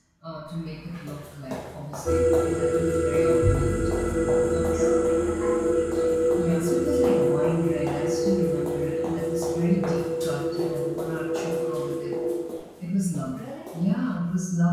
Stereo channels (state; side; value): identical; both; correlation 1.00